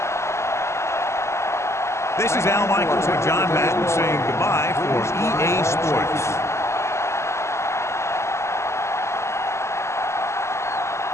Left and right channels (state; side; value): late; right; 0.13 ms